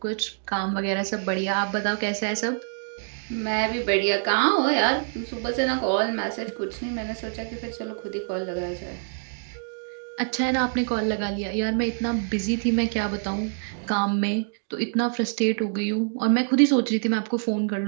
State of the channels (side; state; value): left; silent; digital silence